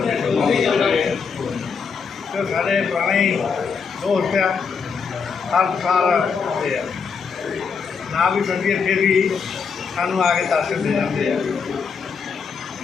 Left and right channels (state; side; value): quieter; right; 5.8 dB